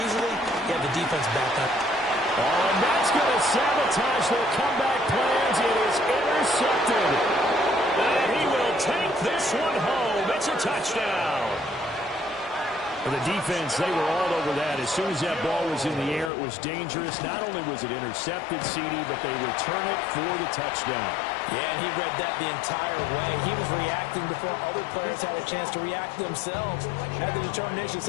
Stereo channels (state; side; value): drops out; right; at 16.3 s